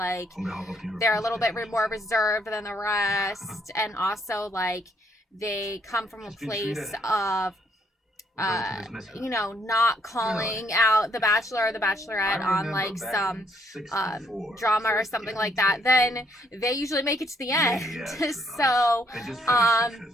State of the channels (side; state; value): both; normal; correlation 0.69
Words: they're a little bit more reserved than the rest, and also like they come from a place of not calling out the bachelor or the bachelorette on like some drama or something like that, then they usually make it to the end. So